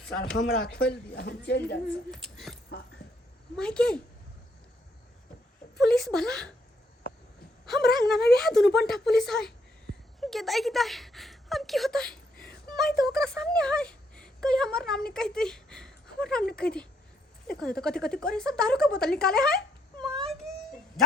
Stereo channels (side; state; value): both; normal; correlation 0.73